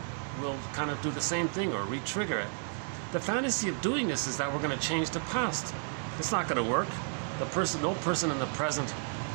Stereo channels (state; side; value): silent; left; 56 dB below the other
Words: will kind of do the same thing or re-trigger it. The fantasy of doing this is that we're going to change the past. It's not going to work. No person in the present